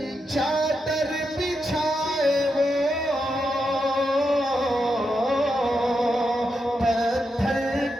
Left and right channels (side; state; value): both; normal; correlation 0.85